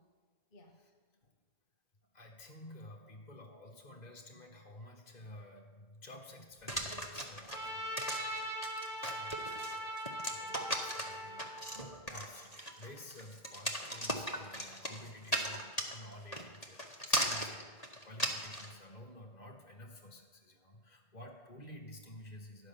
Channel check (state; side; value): late; right; 1.8 ms